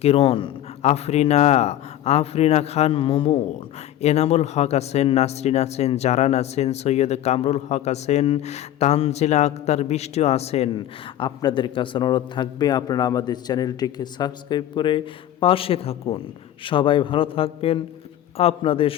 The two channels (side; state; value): right; quieter; 12.3 dB